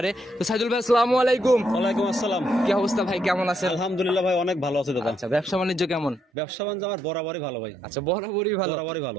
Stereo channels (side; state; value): left; drops out; at 6.2 s